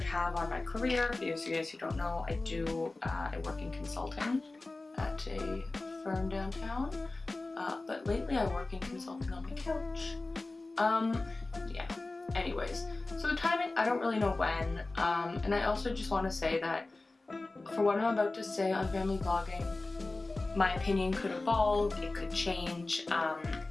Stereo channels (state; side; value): quieter; right; 3.2 dB